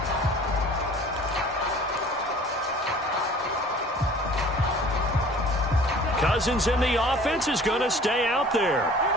Cousins in the offense is going to stay out there.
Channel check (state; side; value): normal; both; correlation 0.48